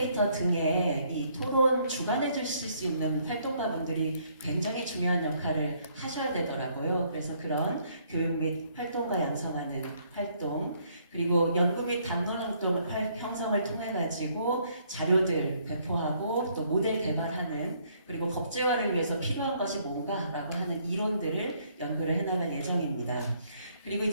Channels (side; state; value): both; inverted; correlation -0.67